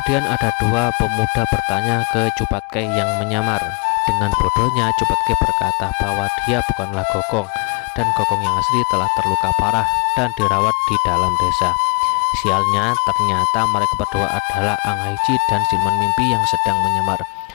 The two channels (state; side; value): quieter; right; 33.5 dB